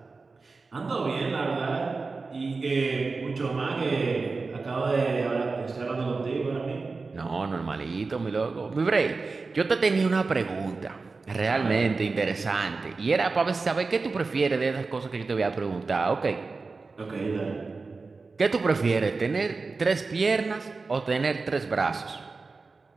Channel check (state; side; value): quieter; left; 4.1 dB